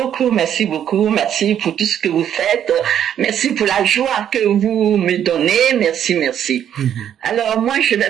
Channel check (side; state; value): left; quieter; 9.7 dB